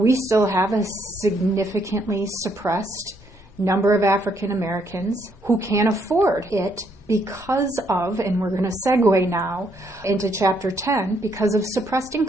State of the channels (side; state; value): both; normal; correlation 0.72